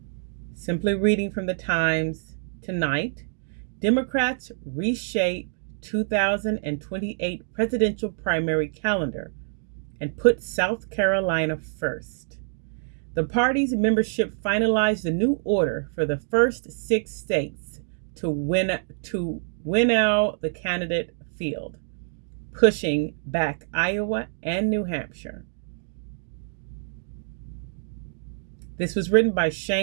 simply reading from the Times tonight. Democrats reshape 2028 presidential primary calendar and put South Carolina first. The party's membership finalized the new order for the first 6 states to winnow the candidate field, pushing back Iowa and New Hampshire. This was written by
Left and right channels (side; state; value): left; silent; digital silence